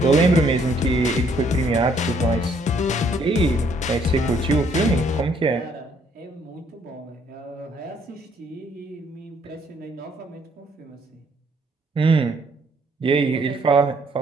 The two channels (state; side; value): normal; both; correlation 0.66